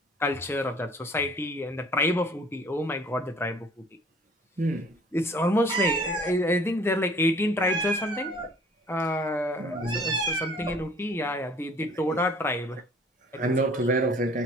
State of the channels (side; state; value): both; normal; correlation 0.53